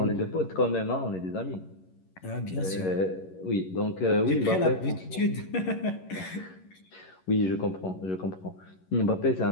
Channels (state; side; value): late; right; 11 ms